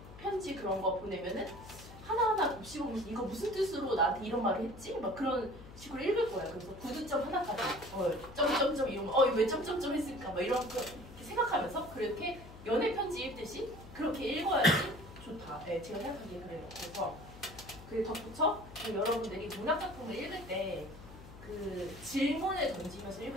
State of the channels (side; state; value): left; noise; hum, 17 dB below the sound